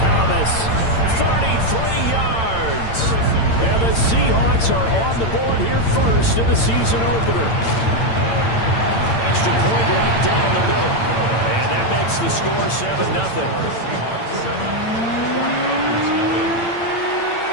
33 yards. And the Seahawks are on the board here first in the season opener. Extra point right down the middle. And that makes the score 7-0.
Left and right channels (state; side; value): late; right; 8.8 ms